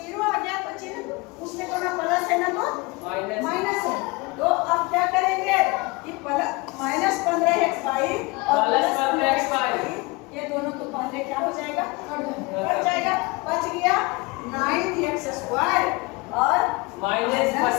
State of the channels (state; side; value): quieter; right; 25.0 dB